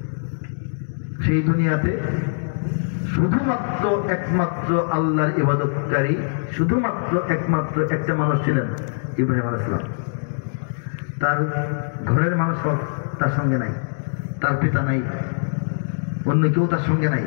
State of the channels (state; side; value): silent; right; digital silence